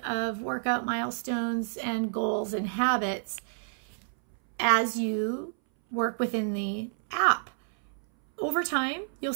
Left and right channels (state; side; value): silent; left; 58 dB below the other